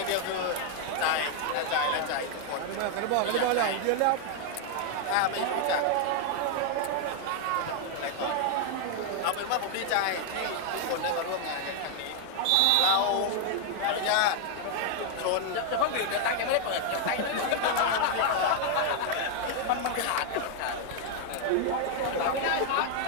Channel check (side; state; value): both; different; correlation 0.00